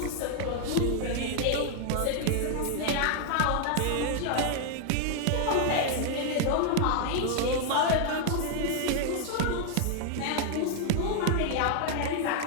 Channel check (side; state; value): both; different; correlation 0.00